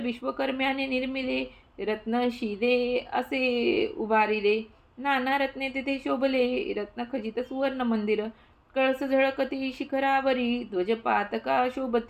विश्वकर्म्याने निर्मिले रत्नशिले असे उभारिले. नाना रत्ने तेथे शोभले रत्नखचित सुवर्ण मंदिर. कळस झळकती शिखरावरी ध्वजपातका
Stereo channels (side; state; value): both; identical; correlation 1.00